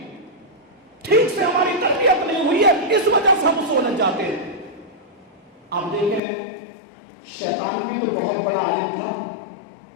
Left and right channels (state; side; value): drops out; right; at 6.2 s